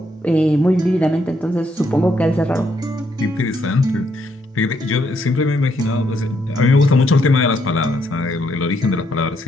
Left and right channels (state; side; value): normal; both; correlation 0.74